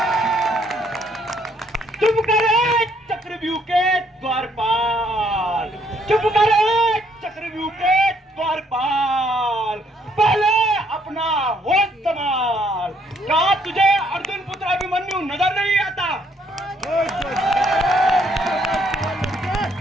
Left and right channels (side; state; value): both; normal; correlation 0.68